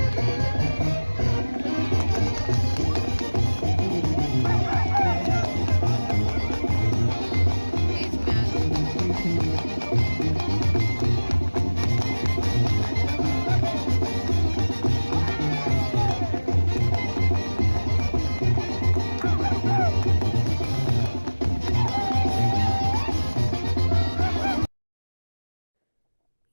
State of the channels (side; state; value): both; inverted; correlation -1.00